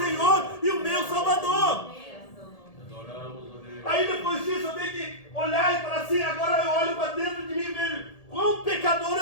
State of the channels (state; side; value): late; right; 1.8 ms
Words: e o meu Salvador. Aí depois disso eu tenho que olhar e falar assim: agora eu olho para dentro de mim e vejo quão pecador